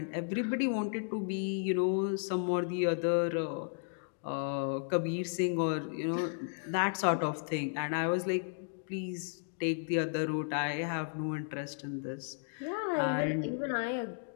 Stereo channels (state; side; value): silent; right; digital silence